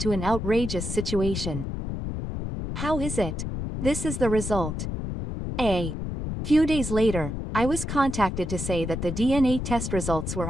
an outrageous situation. How is it? This is the result. A few days later, I was contacted to say that the DNA test results were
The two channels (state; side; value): noise; left; rumble, 4 dB below the sound